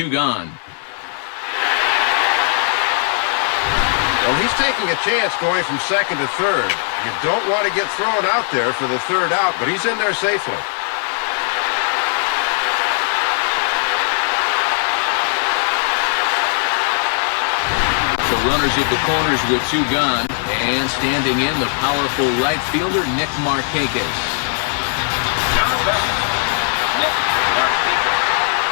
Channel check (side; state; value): right; silent; 67 dB below the other